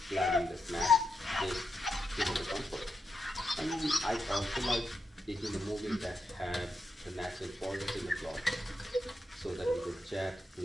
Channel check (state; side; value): normal; both; correlation 0.85